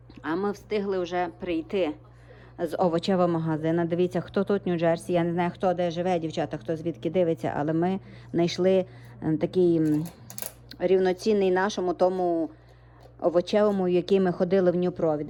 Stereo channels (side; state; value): both; identical; correlation 1.00